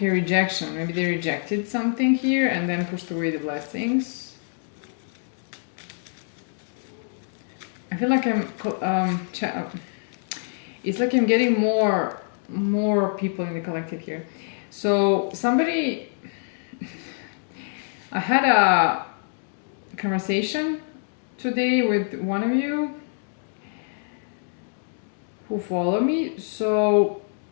rejection. Maybe they rejected something here and then pushed away the blessings. I feel like it's like I'm getting more people in the collective here. So somebody, I had a conversation today with one of you who follow me. So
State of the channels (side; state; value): right; silent; digital silence